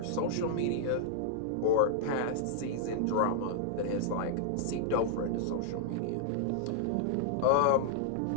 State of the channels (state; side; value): different; both; correlation -0.01